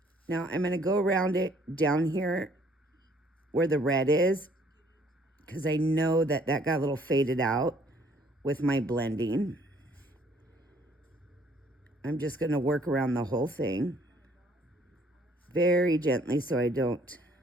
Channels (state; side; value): normal; both; correlation 0.61